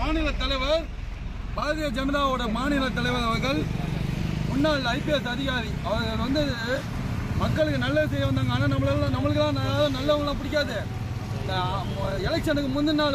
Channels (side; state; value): both; identical; correlation 1.00